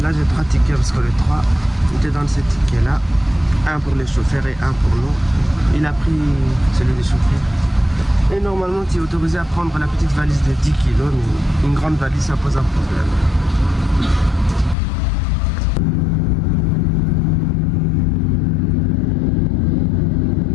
Là j'ai 3 tickets parce que les 3, il te donne ces tickets là, un pour les chauffeurs et un pour nous. Il a pris celui des chauffeurs et normalement tu es autorisé à prendre la petite valise de 10 kilos, mais une grande valise ça pose un problème.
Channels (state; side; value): drops out; right; at 14.8 s